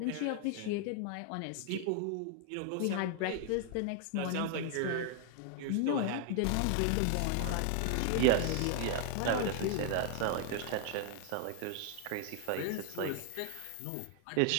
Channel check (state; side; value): different; both; correlation 0.00